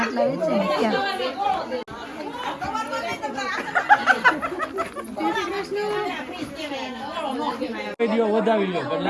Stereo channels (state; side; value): identical; both; correlation 1.00